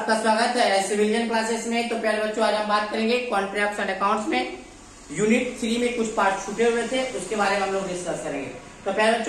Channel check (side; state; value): both; identical; correlation 1.00